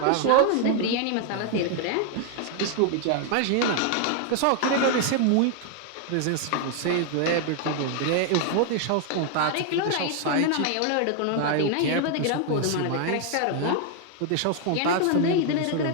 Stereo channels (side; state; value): both; different; correlation 0.00